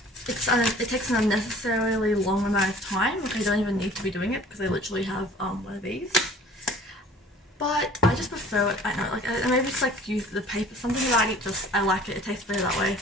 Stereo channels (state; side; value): normal; both; correlation 0.49